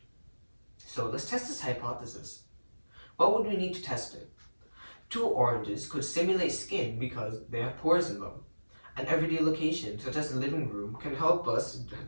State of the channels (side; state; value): both; inverted; correlation -1.00